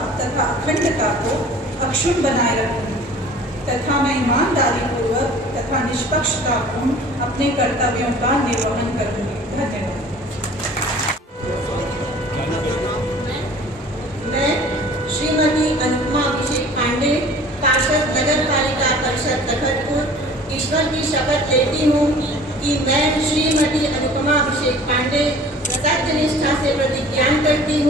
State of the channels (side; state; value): both; normal; correlation 0.47